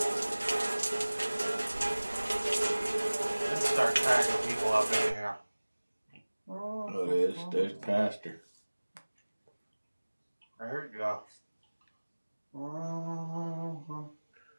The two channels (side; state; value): both; inverted; correlation -1.00